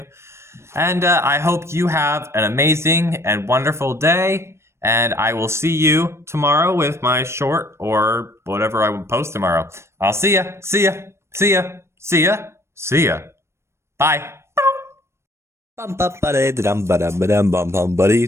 And I hope you have an amazing and wonderful day. And I will see you tomorrow with my short or whatever I will post tomorrow. I'll see ya. See ya. See ya. See ya. See ya. Bye. Bum bum ba dum ba dum bum bum buddy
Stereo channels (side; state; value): left; late; 0.13 ms